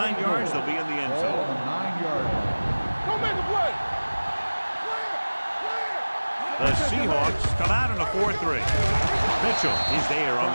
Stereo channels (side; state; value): both; inverted; correlation -1.00